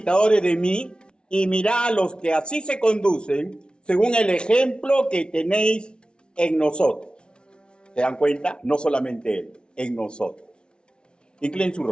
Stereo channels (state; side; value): late; right; 0.056 ms